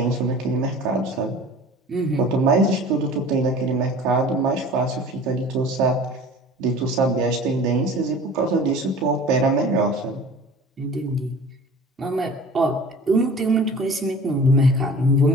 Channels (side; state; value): both; normal; correlation 0.42